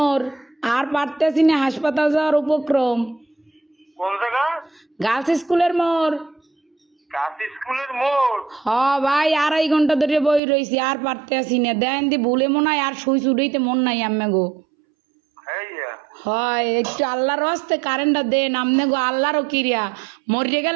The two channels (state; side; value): drops out; left; at 10.4 s